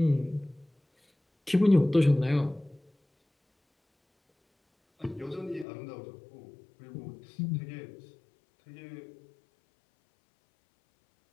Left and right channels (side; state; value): right; drops out; at 5.7 s